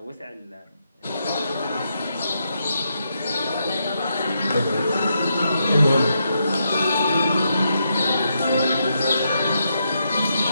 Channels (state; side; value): inverted; both; correlation -0.81